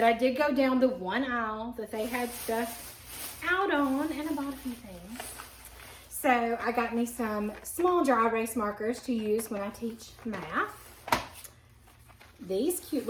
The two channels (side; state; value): both; identical; correlation 1.00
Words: I did go down the one aisle that they had stuff out on, and I bought a few things. So I got me some small dry erase markers to use when I teach math. These cute